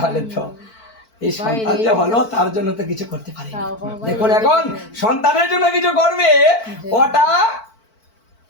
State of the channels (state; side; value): late; right; 4.5 ms